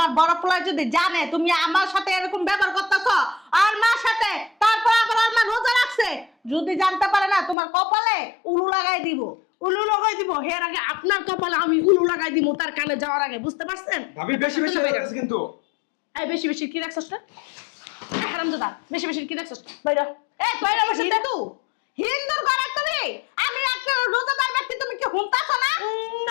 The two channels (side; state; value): right; drops out; at 7.6 s